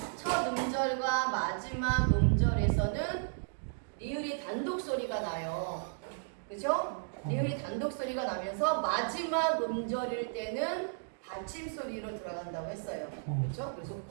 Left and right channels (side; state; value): left; silent; digital silence